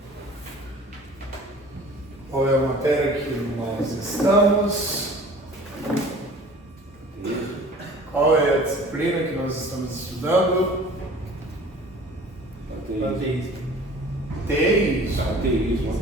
Qual é a matéria que nós estamos? Qual é a disciplina que nós estamos estudando?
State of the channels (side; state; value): both; normal; correlation 0.46